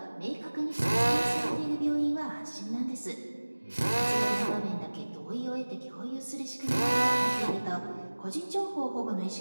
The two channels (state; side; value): inverted; both; correlation -1.00